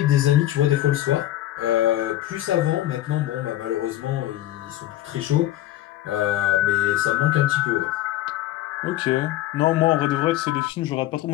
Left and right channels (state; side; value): quieter; right; 14.3 dB